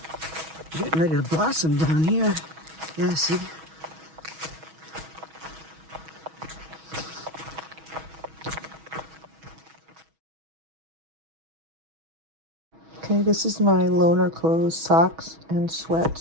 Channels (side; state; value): left; late; 6.2 ms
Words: getting ready to blossom down here. Yeah, see? Okay, this is my loner clothes, socks and